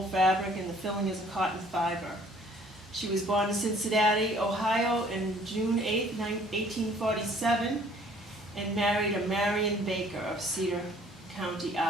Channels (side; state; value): both; normal; correlation 0.57